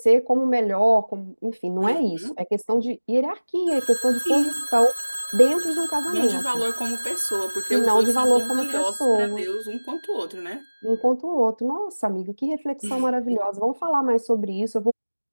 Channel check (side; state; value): both; inverted; correlation -1.00